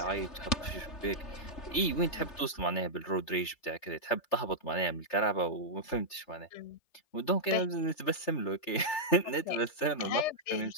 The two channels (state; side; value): late; right; 3.3 ms